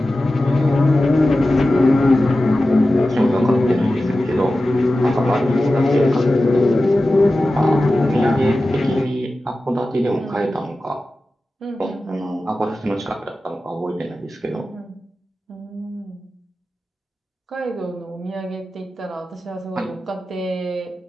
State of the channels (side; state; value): both; normal; correlation 0.94